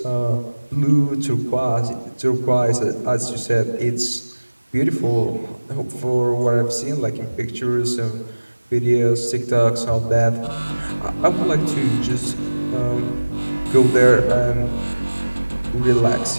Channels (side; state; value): both; inverted; correlation -1.00